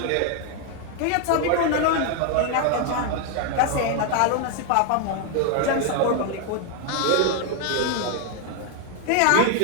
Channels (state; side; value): different; both; correlation 0.01